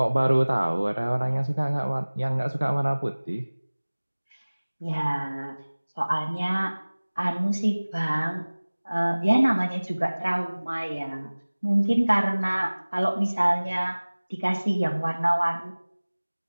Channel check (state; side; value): inverted; both; correlation -1.00